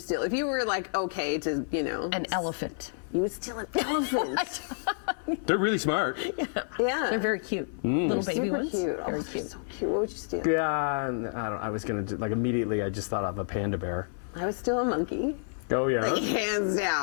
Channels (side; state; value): right; silent; 58 dB below the other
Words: If you were like okay to, An elephant. you would steal an elephant. They're really smart. Yeah. They're very cute. Little baby super ones. cute. Very Oh, cute. so cute. What would you steal? Yeah, I was going to, like, immediately I just thought of a panda bear. I would steal a monkey. Oh, yeah. Hands